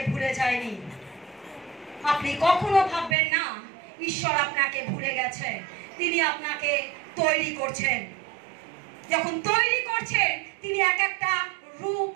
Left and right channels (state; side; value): drops out; left; at 3.2 s